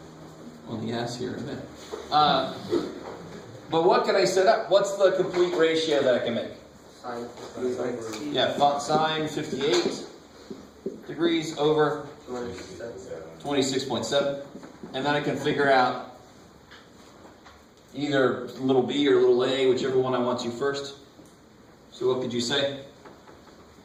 on the S here in a minute. But what can I set up? What's the complete ratio that I can make? Yeah, sine 58 degrees over 26.7. And then I can figure out either little b or little a, whichever one I want to first. So what could you say?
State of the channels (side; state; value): both; identical; correlation 1.00